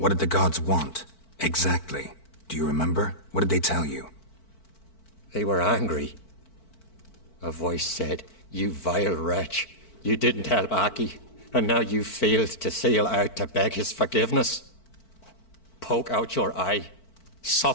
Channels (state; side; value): late; right; 4.5 ms